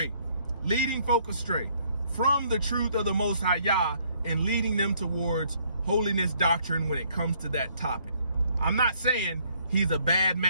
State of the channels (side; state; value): both; inverted; correlation -0.66